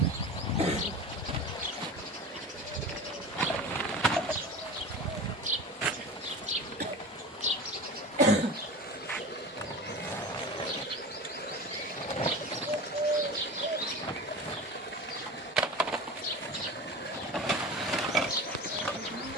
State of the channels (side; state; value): both; normal; correlation 0.31